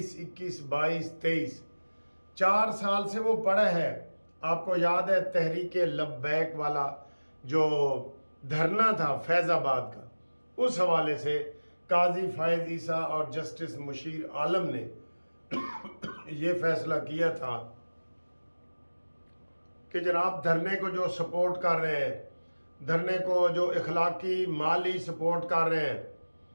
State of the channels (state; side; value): inverted; both; correlation -1.00